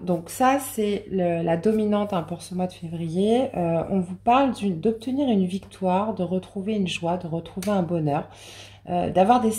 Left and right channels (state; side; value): identical; both; correlation 1.00